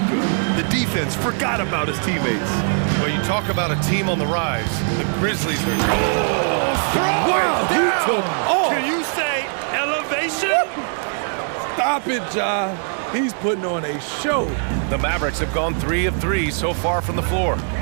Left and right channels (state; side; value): silent; left; 56 dB below the other